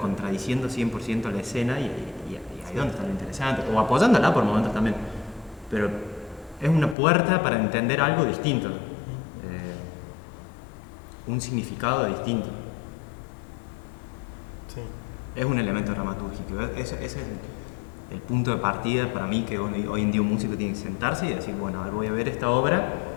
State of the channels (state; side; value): drops out; right; at 7.0 s